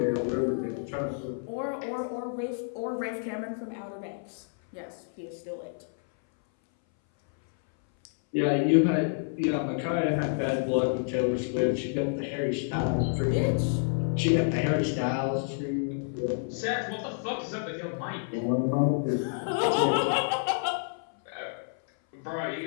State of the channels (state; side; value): silent; right; 59 dB below the other